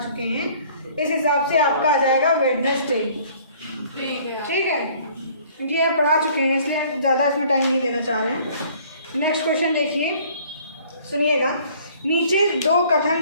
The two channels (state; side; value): inverted; both; correlation -0.56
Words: हैं, इस हिसाब से आपका आ जाएगा वेडनेसडे। ठीक है, ये आप पढ़ा चुके हैं इसलिए ज़्यादा इसमें टाइम नहीं देना चाह रहे हैं। नेक्स्ट क्वेश्चन देखिए, सुनिएगा। नीचे 2